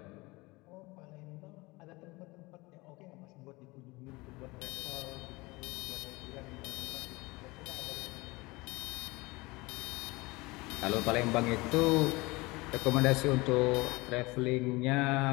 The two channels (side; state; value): right; quieter; 23.3 dB